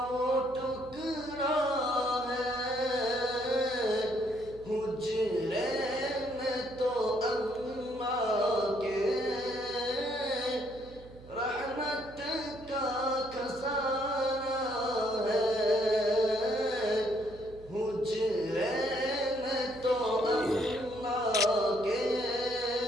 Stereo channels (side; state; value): right; noise; hum, 19 dB below the sound